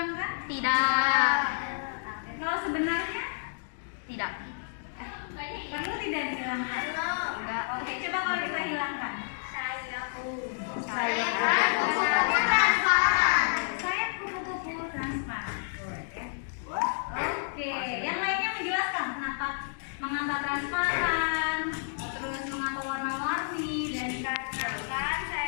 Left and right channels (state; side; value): silent; right; digital silence